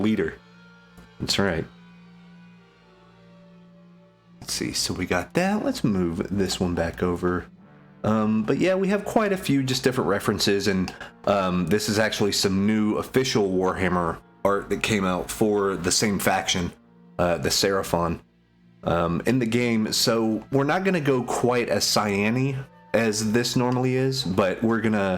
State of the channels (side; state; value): both; identical; correlation 1.00